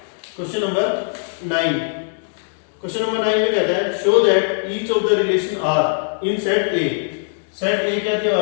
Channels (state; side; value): silent; right; digital silence